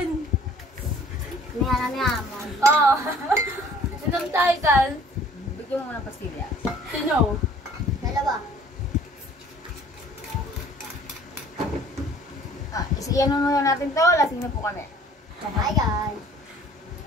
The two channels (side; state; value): both; normal; correlation 0.53